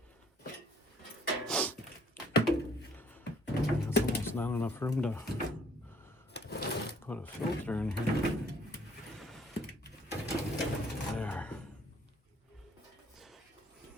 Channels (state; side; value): normal; both; correlation 0.61